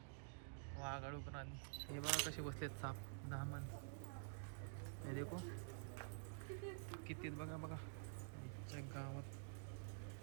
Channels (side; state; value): left; silent; digital silence